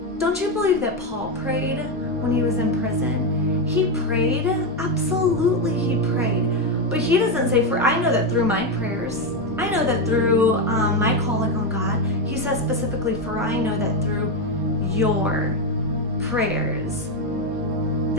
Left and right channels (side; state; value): both; normal; correlation 0.09